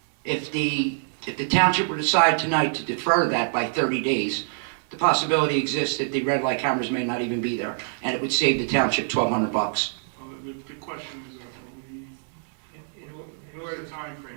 If the if the township were to decide tonight to defer that by 30 days, the possibility exists that the red light cameras may not even be there, and it would save the township $1,200. Well, the question is, what's the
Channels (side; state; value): left; silent; digital silence